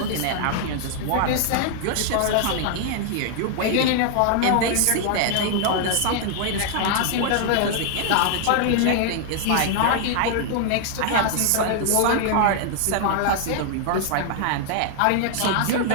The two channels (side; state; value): both; different; correlation 0.00